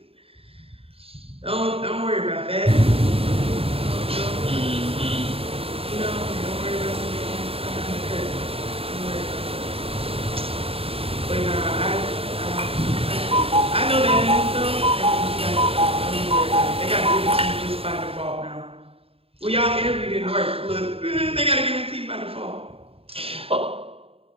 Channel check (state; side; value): late; left; 0.28 ms